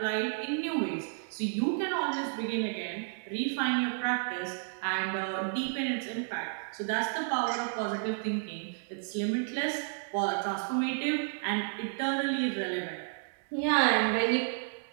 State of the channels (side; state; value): left; silent; digital silence